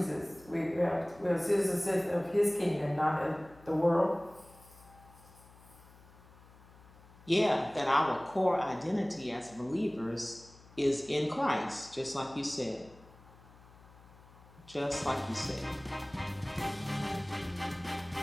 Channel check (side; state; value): left; noise; hum, 23 dB below the sound